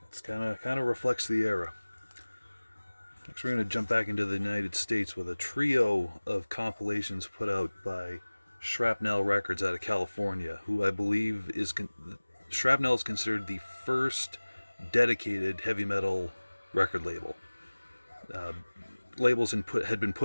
it's kind of reflects the era. Next, we're going to jump back into the United States with a trio of compilations put out by Shrapnel Records out of California, who I believe is Shrapnel is considered the first dedicated heavy metal record label. Labels had been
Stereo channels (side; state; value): both; inverted; correlation -1.00